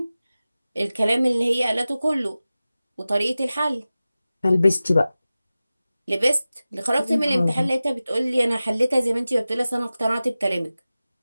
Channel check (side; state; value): both; inverted; correlation -0.96